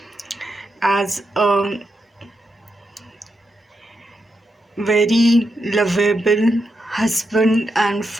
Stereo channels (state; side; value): normal; both; correlation 0.85